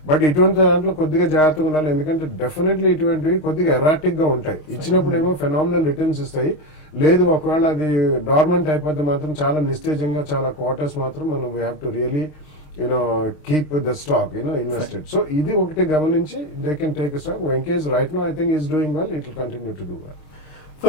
బట్ ఇటువంటి దాంట్లో కొద్దిగా జాగ్రత్తగా ఉండాలి, ఎందుకంటే డెఫినెట్లీ ఇటువంటివి కొద్దిగా ఎరాటిక్ గా ఉంటాయి. ఇచ్చినప్పుడు ఏమో ఫెనామినల్ రిటర్న్స్ ఇస్తాయి, లేదు ఒకవేళ అది డార్మెంట్ అయిపోతే మాత్రం చాలా నిస్తేజంగా చాలా క్వార్టర్స్ మాత్రం మనం we have to really keep the stock invested. So ఇది ఒకటి గమనించి they can take a stock. Venkis right now I think is doing well, it will continue to do well.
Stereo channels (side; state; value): right; late; 28 ms